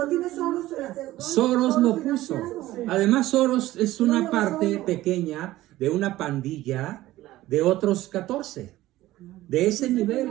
tiene Soros. Soros lo puso. financiado. Además, Soros es una parte pequeña de una pandilla de otros 14. De ese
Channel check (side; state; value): left; quieter; 16.0 dB